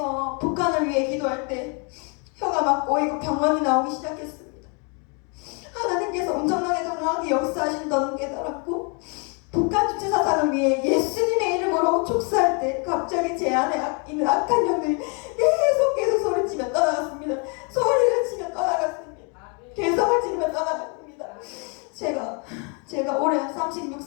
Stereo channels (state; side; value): quieter; right; 35.5 dB